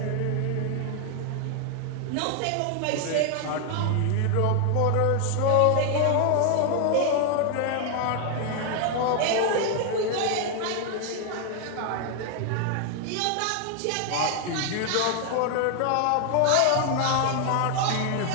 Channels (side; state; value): both; different; correlation 0.00